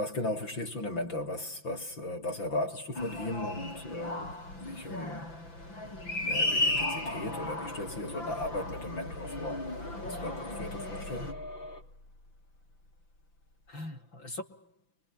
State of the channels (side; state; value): right; late; 5.9 ms